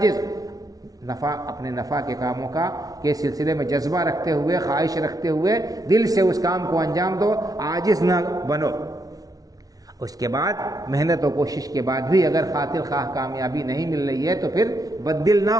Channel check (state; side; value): late; left; 0.18 ms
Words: اپنے نفع کے کاموں کے سلسلے میں جذبہ رکھتے ہوئے، خواہش رکھتے ہوئے دل سے اس کام کو انجام دو، عاجز نہ بنو۔ اس کے بعد محنت و کوشش کے بعد بھی اگر خاطر خواہ کامیابی نہیں مل رہی ہے تو پھر بددل نہ